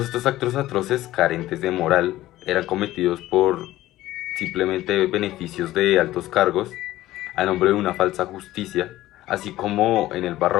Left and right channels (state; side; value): quieter; right; 15.5 dB